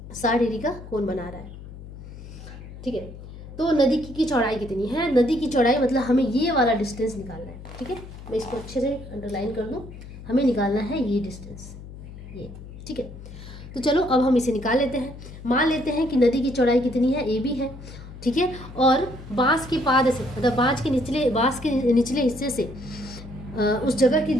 60 डिग्री का कोण बना रहा है, ठीक है। तो नदी की चौड़ाई कितनी है, नदी की चौड़ाई मतलब हमें ये वाला डिस्टेंस निकालना है, ठीक है। मैं इसको अच्छे से अंडरलाइन कर दूं, हमें निकालना है ये डिस्टेंस, ये, ठीक है। तो चलो अब हम इसे निकाल लेते हैं। मान लेते हैं कि नदी की चौड़ाई कितनी है, AB है, ठीक है। और बांस के पाद से, मतलब बांस के निचले हिस्से से उस जगह की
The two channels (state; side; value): noise; left; hum, 14 dB below the sound